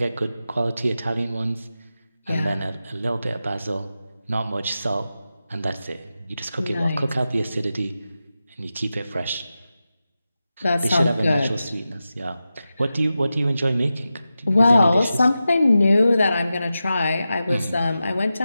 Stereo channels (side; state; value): both; inverted; correlation -0.92